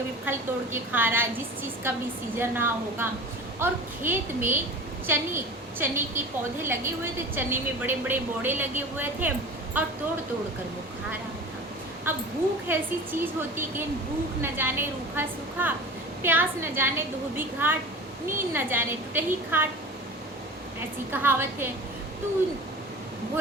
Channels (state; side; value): normal; both; correlation 0.36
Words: फल तोड़ के खा रहा है, जिस चीज़ का भी सीजन रहा होगा। और खेत में चने के पौधे लगे हुए थे, चने में बड़े बड़े बोड़े लगे हुए थे और तोड़ तोड़ कर वो खा रहा था। अब भूख ऐसी चीज़ होती कि भूख न जाने रूखा सूखा, प्यास न जाने धोबी घाट, नींद न जाने टूटही खाट, ऐसी कहावत है। तो